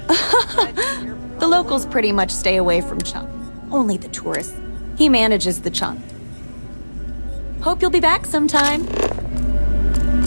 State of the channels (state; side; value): inverted; both; correlation -1.00